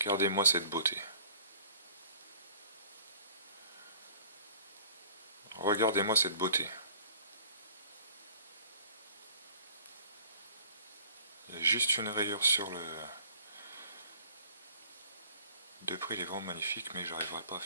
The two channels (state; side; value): inverted; both; correlation -0.51